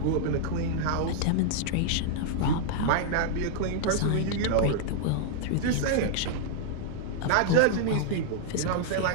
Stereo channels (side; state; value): both; different; correlation -0.01